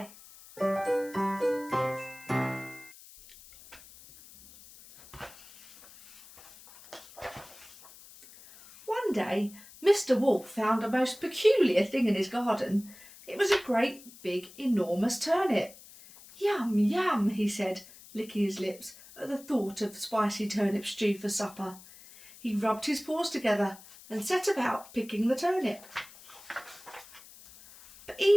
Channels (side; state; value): left; noise; hiss, 20 dB below the sound